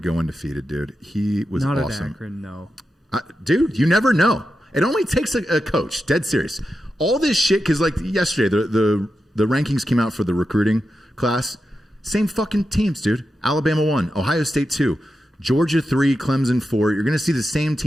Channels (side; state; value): both; normal; correlation 0.89